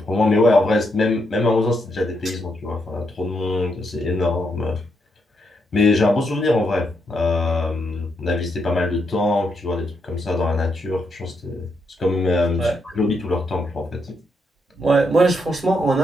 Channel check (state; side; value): normal; both; correlation 0.79